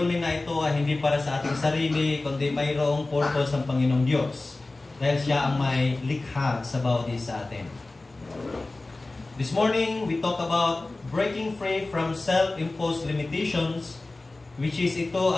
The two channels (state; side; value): quieter; right; 3.1 dB